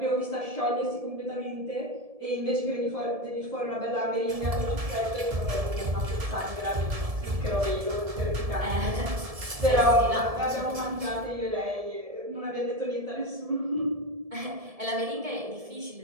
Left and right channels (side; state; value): left; late; 1.7 ms